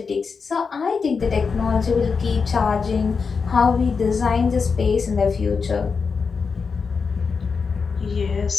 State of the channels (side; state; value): right; quieter; 5.3 dB